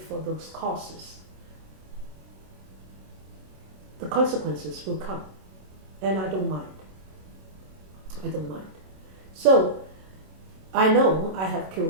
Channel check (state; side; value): late; left; 27 ms